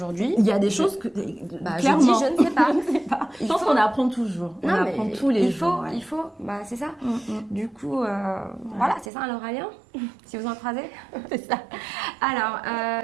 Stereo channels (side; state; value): left; drops out; at 9.1 s